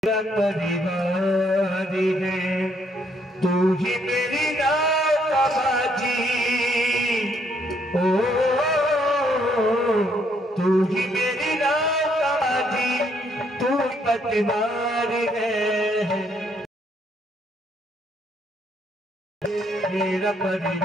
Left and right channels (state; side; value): normal; both; correlation 0.70